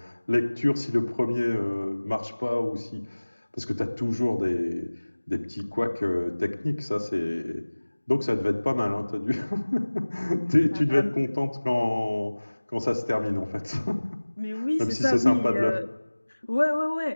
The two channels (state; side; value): inverted; both; correlation -1.00